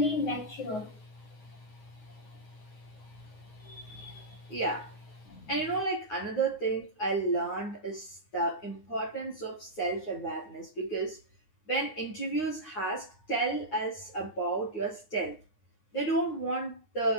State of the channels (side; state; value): right; late; 9.6 ms